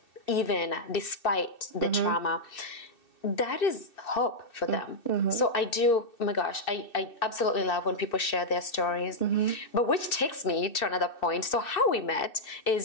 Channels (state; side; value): late; right; 2.6 ms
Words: even despite the trauma, that is hope for them. So I do, oh my gosh, I absolutely love when people share their stories. But which takes me to another point. So how we met